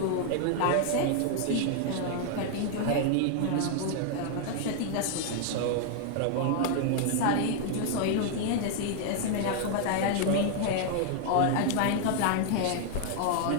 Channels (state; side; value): different; both; correlation 0.00